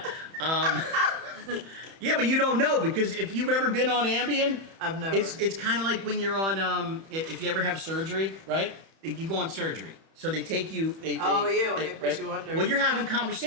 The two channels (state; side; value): late; left; 31 ms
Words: Yeah, but you don't know because if you've ever been on Ambien, I've never. It's kind of like when you're on if you ever have surgery, right? You go on surgery, so they take you. When they put you under. Well, you're having